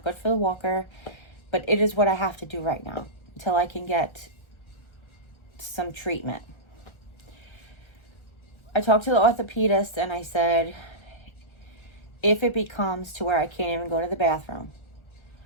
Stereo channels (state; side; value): late; right; 1.4 ms